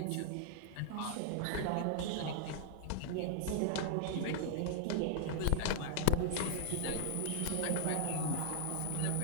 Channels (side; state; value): both; different; correlation -0.01